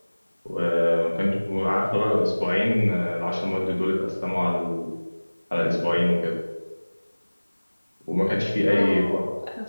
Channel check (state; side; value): inverted; both; correlation -1.00